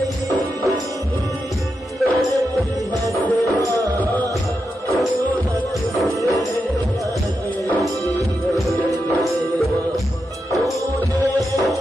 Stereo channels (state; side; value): normal; both; correlation 0.87